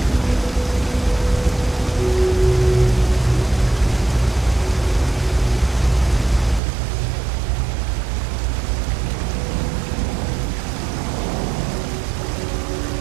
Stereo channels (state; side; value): drops out; left; at 6.6 s